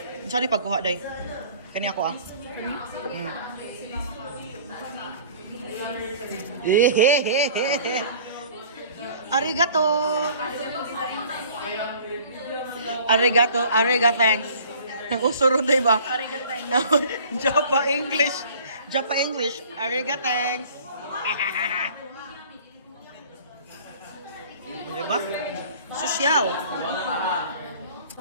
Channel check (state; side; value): inverted; both; correlation -0.49